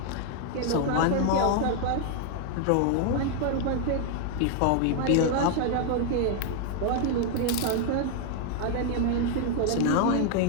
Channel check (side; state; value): both; different; correlation 0.00